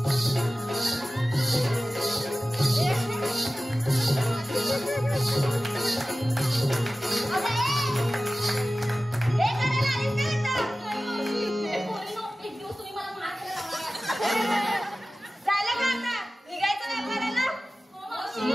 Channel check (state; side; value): normal; both; correlation 0.96